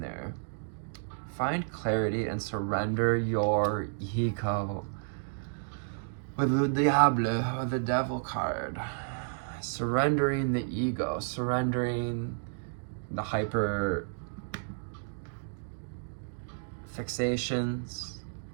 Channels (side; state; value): left; silent; digital silence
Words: there. Find clarity and surrender your ego. With the Diable, or the Devil card, surrendering the ego, surrendering the hyper fixations,